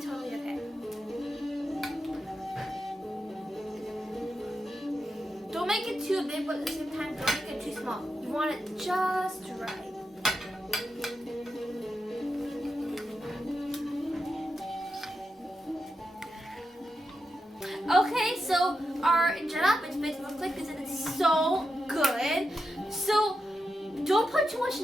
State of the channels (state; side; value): normal; both; correlation 0.88